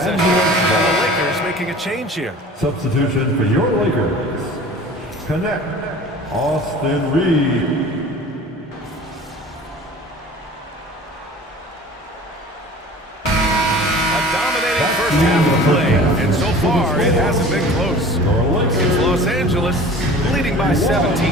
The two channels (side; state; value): both; normal; correlation 0.43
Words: And the Lakers making a change here. Substitution for your Lakers. Connect Austin Reed. First half of play, and so far it hasn't been close. It's Los Angeles leading by 17,